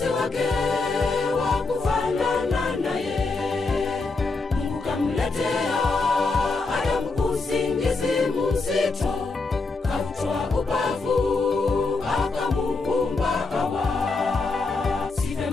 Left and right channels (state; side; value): quieter; right; 3.9 dB